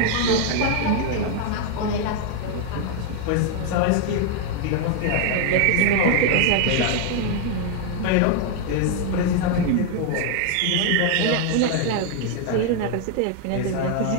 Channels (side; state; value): both; different; correlation 0.00